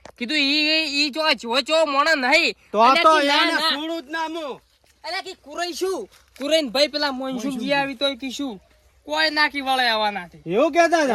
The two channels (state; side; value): identical; both; correlation 1.00